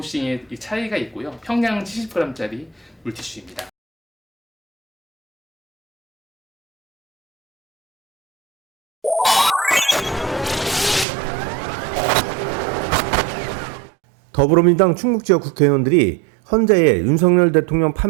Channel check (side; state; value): left; drops out; at 11.1 s